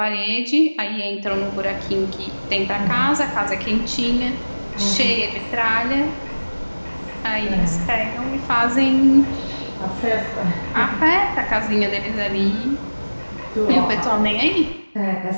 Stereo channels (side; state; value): both; inverted; correlation -1.00